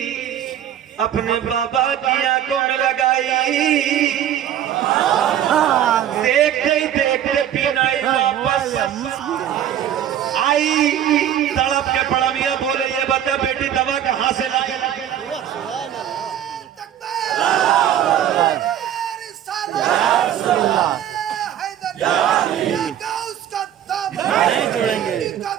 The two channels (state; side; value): quieter; left; 10.5 dB